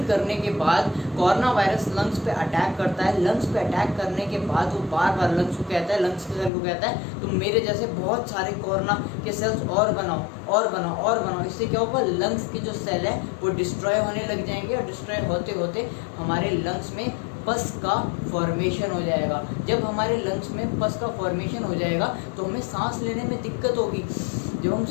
करने के बाद कोरोना वायरस लंग्स पे अटैक करता है। लंग्स पे अटैक करने के बाद वो बार बार लंग्स को कहता है, लंग्स के सेल को कहता है तुम मेरे जैसे बहुत सारे कोरोना के सेल्स और बनाओ। इससे क्या होगा, लंग्स के जो सेल है वो डिस्ट्रॉय होने लग जाएंगे और डिस्ट्रॉय होते होते हमारे लंग्स में पस का फॉर्मेशन हो जाएगा। जब हमारे लंग्स में पस का फॉर्मेशन हो जाएगा तो हमें सांस लेने में दिक्कत होगी। जब हम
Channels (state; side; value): drops out; right; at 6.5 s